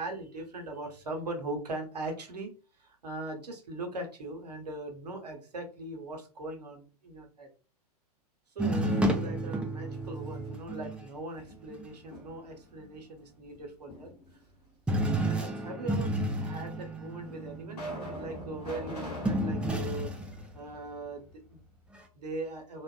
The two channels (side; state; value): both; normal; correlation 0.36